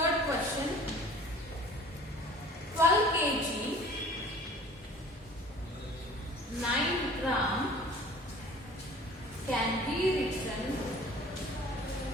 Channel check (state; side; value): normal; both; correlation 0.47